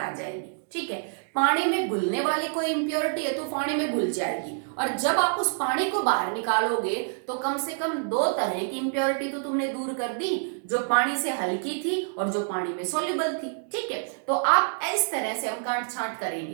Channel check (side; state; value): left; silent; digital silence